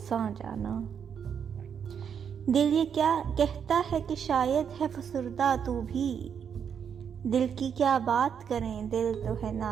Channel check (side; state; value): left; quieter; 7.6 dB